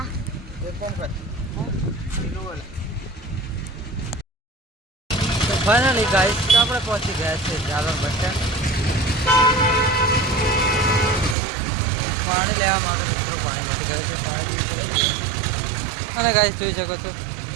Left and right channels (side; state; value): left; drops out; at 11.4 s